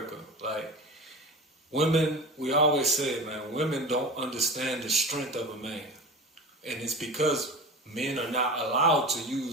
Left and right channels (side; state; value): both; normal; correlation 0.31